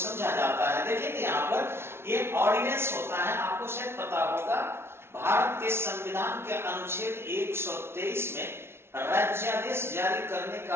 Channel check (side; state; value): left; late; 0.12 ms